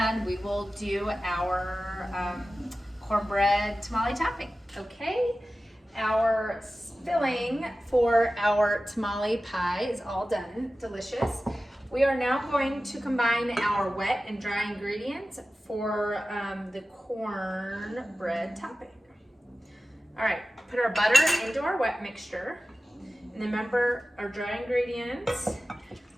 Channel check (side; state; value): both; normal; correlation 0.95